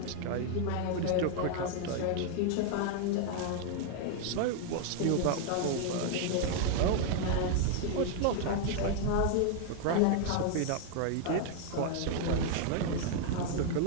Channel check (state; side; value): different; both; correlation 0.00